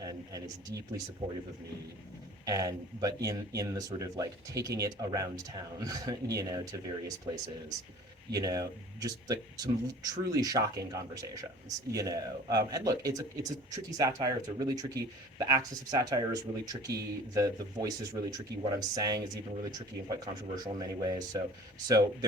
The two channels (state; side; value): normal; both; correlation 0.46